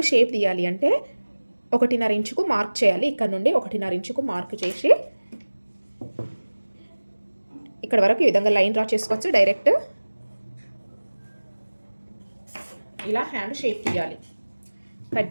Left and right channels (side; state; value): both; inverted; correlation -1.00